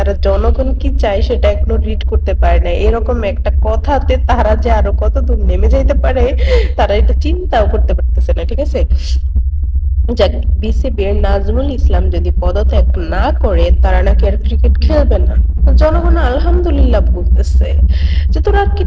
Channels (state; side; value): identical; both; correlation 1.00